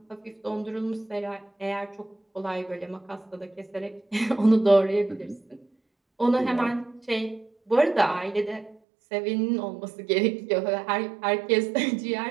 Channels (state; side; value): drops out; left; at 8.8 s